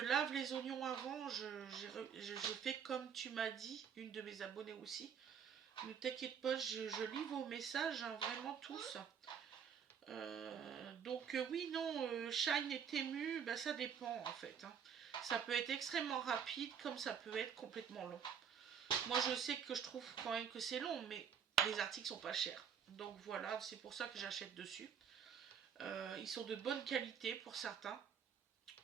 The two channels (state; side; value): quieter; left; 7.6 dB